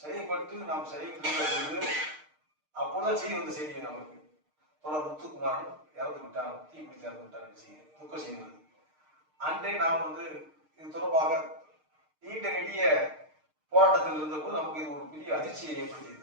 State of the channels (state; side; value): late; left; 6.5 ms